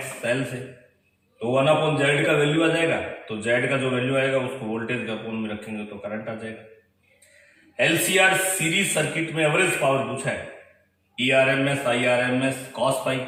एल से, तो 1/z का वैल्यू आ जाएगा। तो z का जो वैल्यू आएगा उसको वोल्टेज के अपोन में रखेंगे तो करंट आ जाएगा। एलसीआर सीरीज सर्किट में एवरेज पावर पूछा है, ERMS IRMS cos पाई।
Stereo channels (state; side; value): identical; both; correlation 1.00